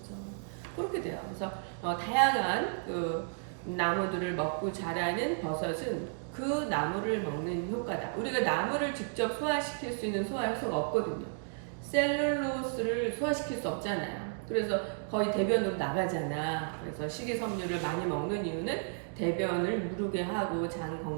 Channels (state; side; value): silent; left; digital silence